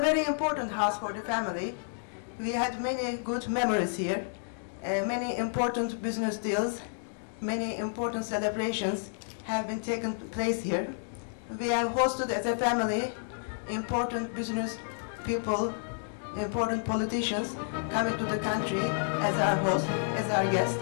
very important house for the family. We had many good memories here, many important business deals, many important celebrations have been taken place here. We have hosted as a family important business people, important politicians coming to the country as our host, as our guest.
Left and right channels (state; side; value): silent; right; digital silence